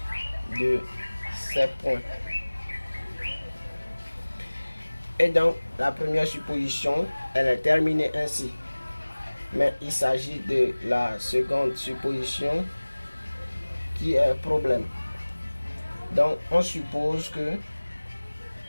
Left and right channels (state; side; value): inverted; both; correlation -1.00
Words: de ces points. Et donc, la première supposition, elle est terminée ainsi. Mais il s'agit de la seconde supposition qui est problème. Donc, on suppose que